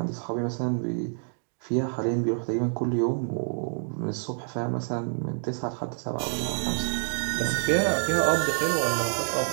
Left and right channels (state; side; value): silent; left; 60 dB below the other